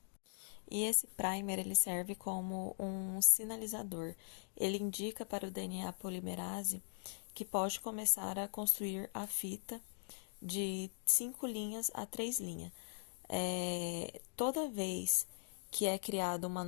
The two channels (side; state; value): right; silent; digital silence